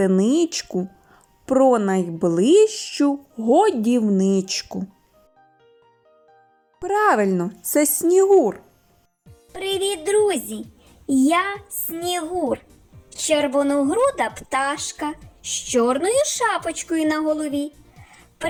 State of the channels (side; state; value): both; identical; correlation 1.00